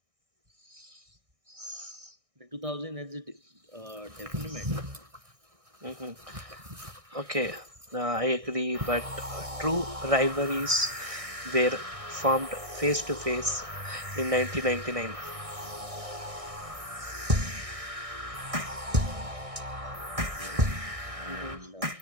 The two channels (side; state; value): left; late; 1.6 ms